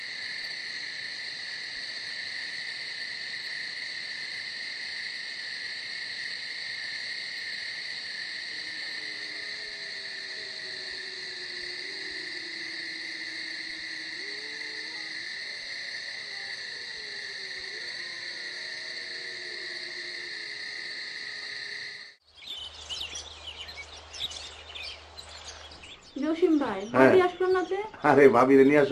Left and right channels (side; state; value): both; identical; correlation 1.00